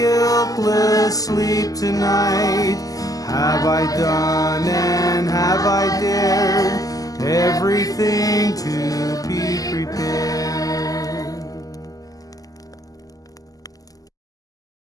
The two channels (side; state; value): right; late; 0.17 ms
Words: sleep tonight? Have I done and have I dared everything to be prepared?